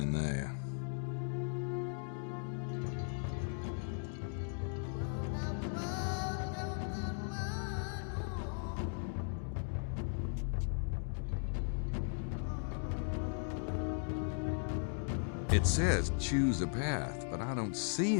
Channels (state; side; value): silent; right; 53 dB below the other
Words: there. It says choose a path, but I don't